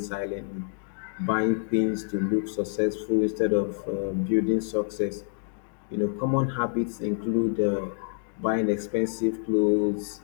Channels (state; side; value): silent; right; digital silence